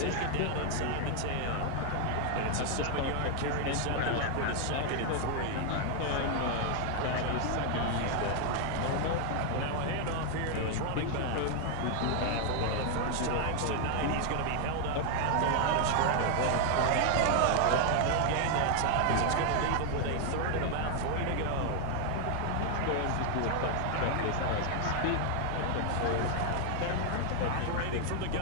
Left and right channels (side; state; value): both; different; correlation 0.00